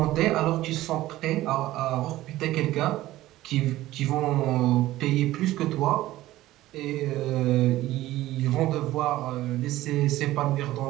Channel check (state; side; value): quieter; left; 16.0 dB